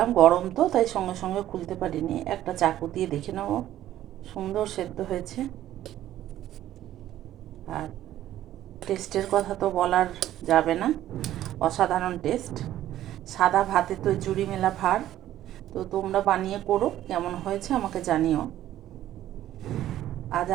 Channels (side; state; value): left; quieter; 12.9 dB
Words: গরম তো তাই সঙ্গে সঙ্গে খুলতে পারিনি, একটা চাকু দিয়ে দেখে নেব। সুন্দর সেদ্ধ হয়েছে। আর টেস্টের কথা তো বলার যাবে না, অসাধারণ টেস্ট। সাদা ভাতে তো জুড়ি মেলা ভার। তো তোমরা বানিয়ে করো, কেমন হয়েছে আমাকে জানিও। আজ